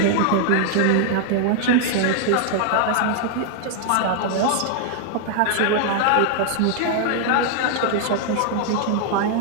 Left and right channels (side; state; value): both; different; correlation 0.00